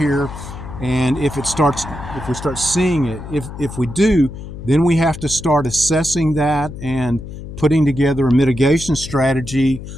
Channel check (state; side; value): noise; left; hum, 11 dB below the sound